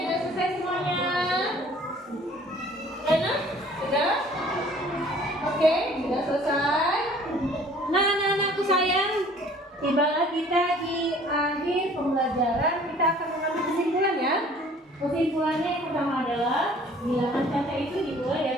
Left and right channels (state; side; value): normal; both; correlation 0.53